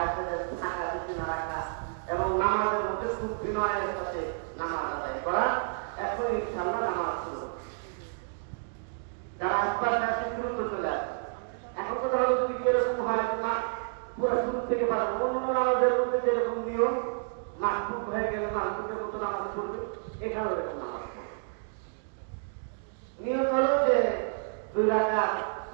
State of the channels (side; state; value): left; silent; digital silence